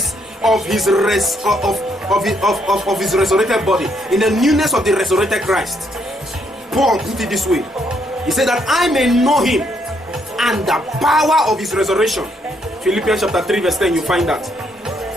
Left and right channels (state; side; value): normal; both; correlation 0.72